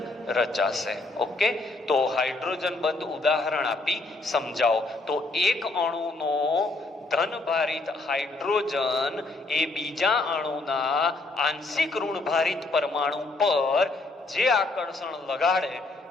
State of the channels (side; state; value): right; quieter; 3.2 dB